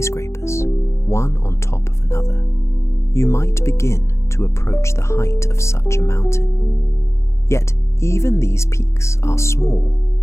one on top of another, you might begin to approach the height of such a mountain. Yet even these peaks are small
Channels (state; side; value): late; right; 0.14 ms